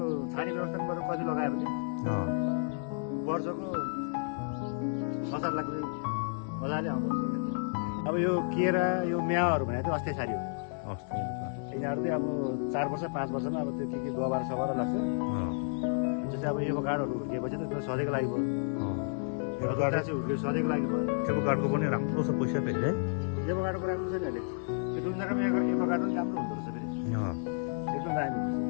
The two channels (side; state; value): right; silent; digital silence